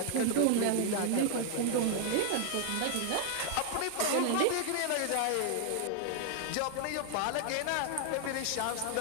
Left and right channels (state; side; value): different; both; correlation 0.00